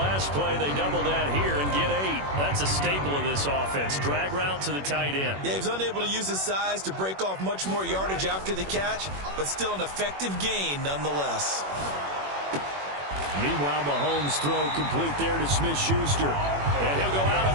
play. They double that here and get 8. That's a staple of this offense. Drag route to the tight end. Yeah, he was unable to use his size to break off much more yardage after the catch, but still an effective gain nonetheless. Meanwhile, Mahomes' throw complete there to Smith-Schuster. And he'll go out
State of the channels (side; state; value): left; late; 21 ms